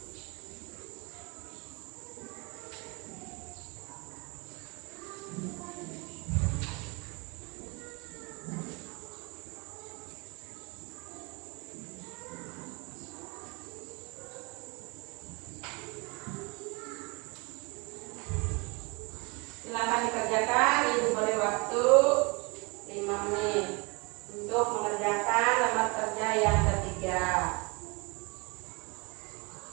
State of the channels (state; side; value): quieter; left; 28.9 dB